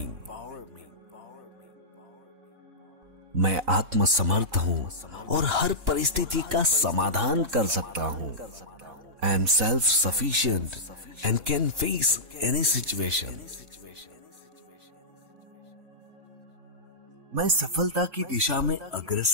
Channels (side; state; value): left; late; 3.8 ms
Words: मैं आत्मसमर्थ हूं और हर परिस्थिति का समाधान कर सकता हूं। I am self sufficient and can face any situation. मैं सफलता की दिशा में